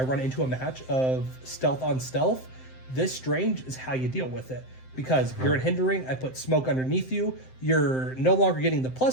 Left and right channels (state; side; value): late; right; 7.7 ms